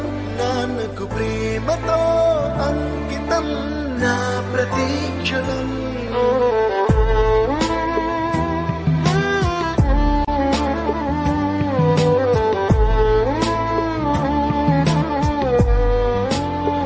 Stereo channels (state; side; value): identical; both; correlation 1.00